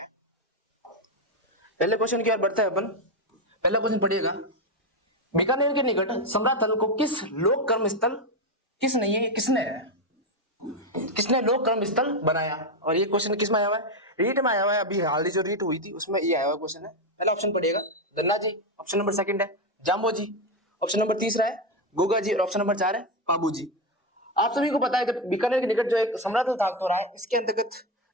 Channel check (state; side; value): normal; both; correlation 0.09